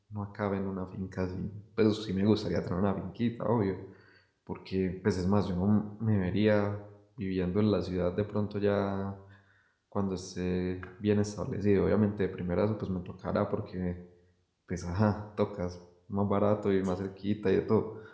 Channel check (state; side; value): identical; both; correlation 1.00